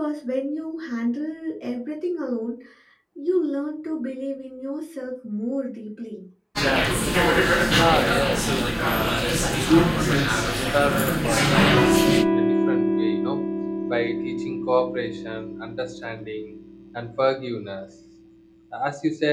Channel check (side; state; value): both; identical; correlation 1.00